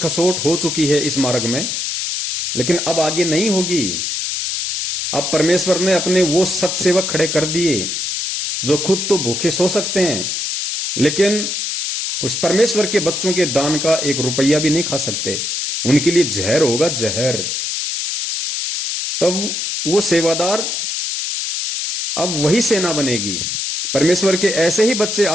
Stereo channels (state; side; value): noise; left; hiss, 2 dB below the sound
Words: हो चुकी है इस मार्ग में, लेकिन अब आगे नहीं होगी। अब परमेश्वर ने अपने वो सत्सेवक खड़े कर दिए जो खुद तो भूखे सो सकते हैं, लेकिन उस परमेश्वर के बच्चों के दान का 1 रुपया भी नहीं खा सकते। उनके लिए जहर होगा, जहर। तब वो सेवादार, अब वही सेना बनेगी। परमेश्वर के ऐसे ही बच्चे